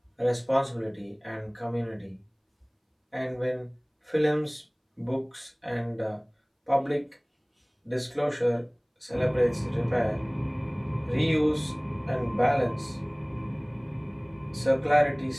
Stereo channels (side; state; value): both; identical; correlation 1.00